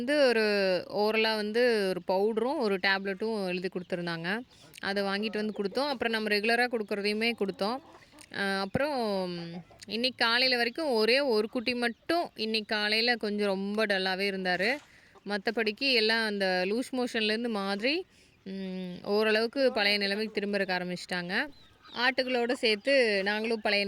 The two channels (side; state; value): both; identical; correlation 1.00